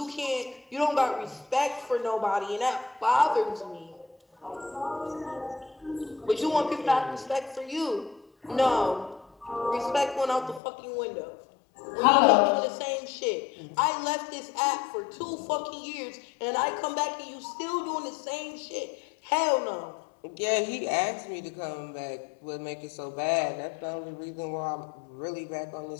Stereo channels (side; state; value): right; drops out; at 10.6 s